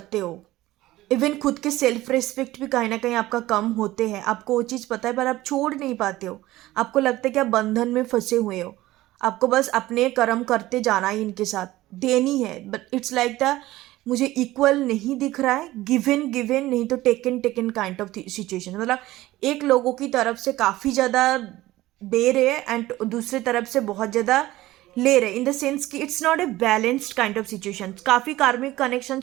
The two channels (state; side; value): quieter; left; 16.9 dB